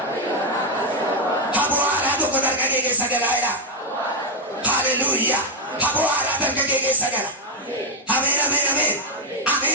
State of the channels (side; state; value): both; normal; correlation 0.03